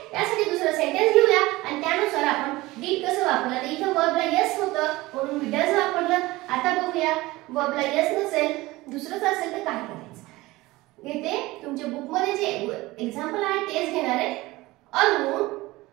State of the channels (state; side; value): quieter; left; 19.8 dB